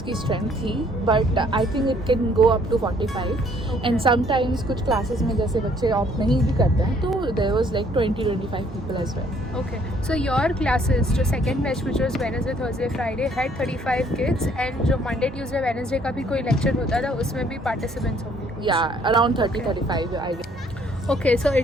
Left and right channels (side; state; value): both; normal; correlation 0.63